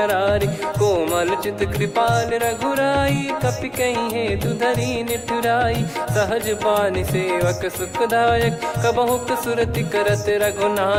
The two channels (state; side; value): identical; both; correlation 1.00